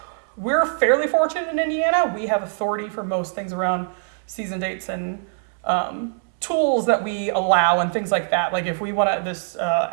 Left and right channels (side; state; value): left; silent; 64 dB below the other